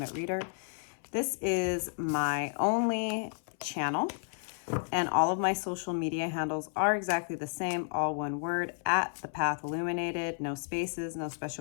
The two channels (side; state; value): right; silent; 56 dB below the other